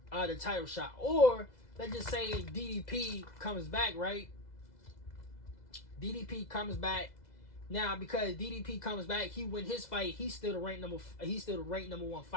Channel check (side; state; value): right; late; 2.0 ms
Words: the title shot. Or, let's just say DDP comes back, right? DDP comes back. Now, because DDP comes back, he win his fight. He's still the ranked number 1